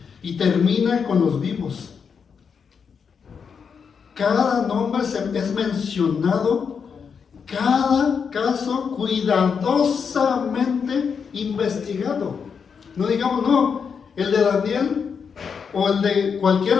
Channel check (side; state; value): right; quieter; 6.3 dB